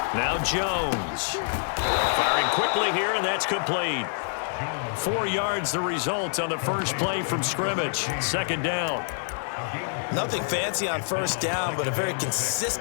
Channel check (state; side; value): silent; right; digital silence